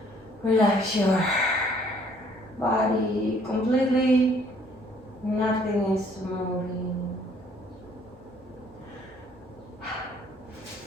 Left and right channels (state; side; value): normal; both; correlation 0.61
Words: Relax your body completely. Nothing is moving.